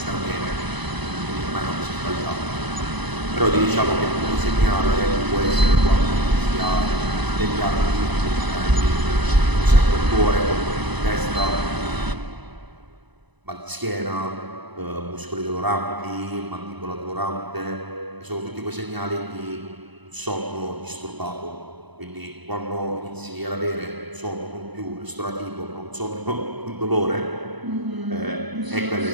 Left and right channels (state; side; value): late; left; 1.0 ms